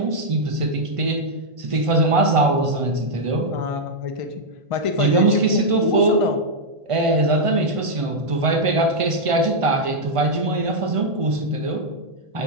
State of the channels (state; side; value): late; left; 1.5 ms